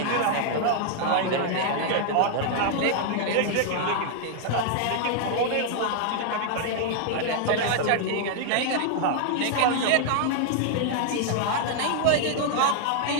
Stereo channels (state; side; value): different; both; correlation 0.00